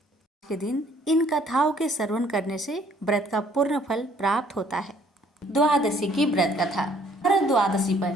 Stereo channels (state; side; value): normal; both; correlation 0.62